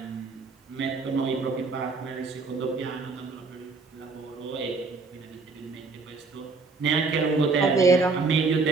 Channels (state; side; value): quieter; left; 4.2 dB